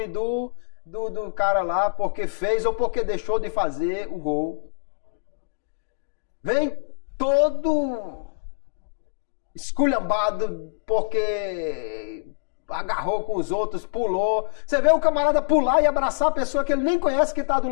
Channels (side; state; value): right; silent; digital silence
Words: do cara lá porque fez ou porque deixou de fazer o gol. Vem todo esculhambado porque agarrou com os outros, pulou. Você vê o camarada pular e abraçar a pessoa que ele nem conhece que está do